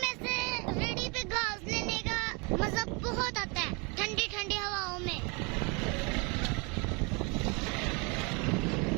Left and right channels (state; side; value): quieter; left; 30.9 dB